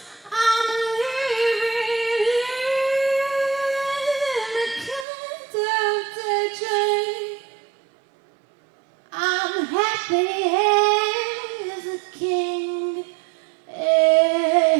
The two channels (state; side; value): drops out; left; at 5.1 s